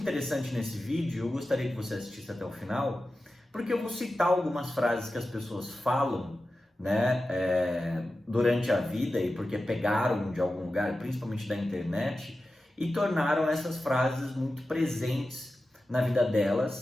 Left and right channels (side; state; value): both; normal; correlation 0.93